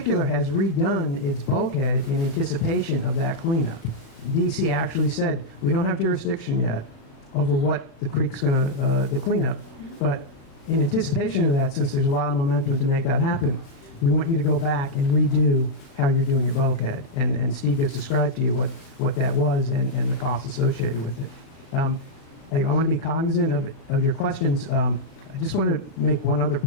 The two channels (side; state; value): right; late; 36 ms